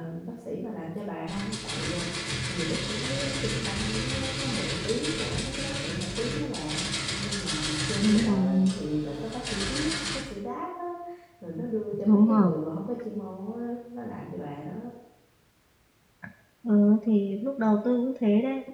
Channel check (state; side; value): identical; both; correlation 1.00